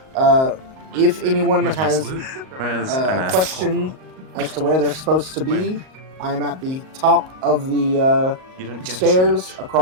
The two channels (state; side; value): late; left; 38 ms